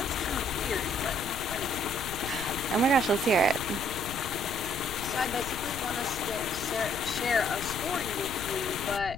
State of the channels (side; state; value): left; noise; rumble, 11 dB below the sound